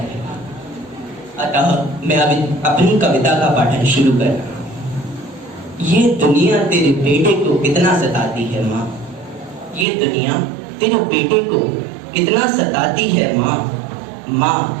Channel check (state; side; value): drops out; left; at 9.9 s